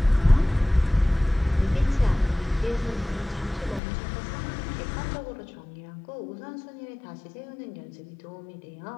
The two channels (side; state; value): right; drops out; at 3.8 s